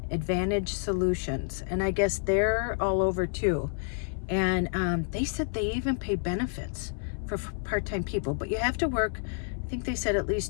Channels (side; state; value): right; silent; 58 dB below the other